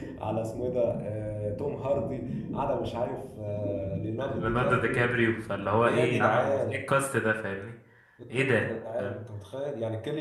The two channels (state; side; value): identical; both; correlation 1.00